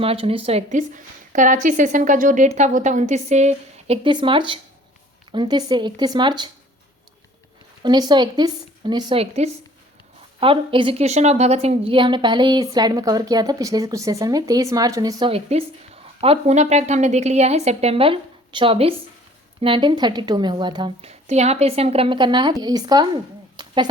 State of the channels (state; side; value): normal; both; correlation 0.52